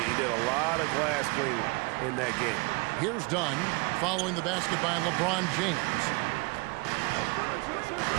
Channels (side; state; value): left; quieter; 27.9 dB